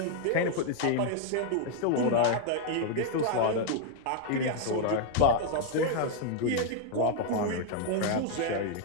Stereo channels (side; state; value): both; different; correlation 0.00